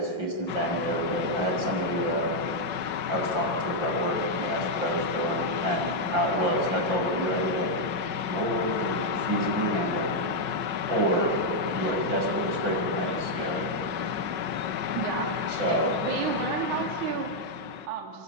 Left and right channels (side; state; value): left; late; 5.4 ms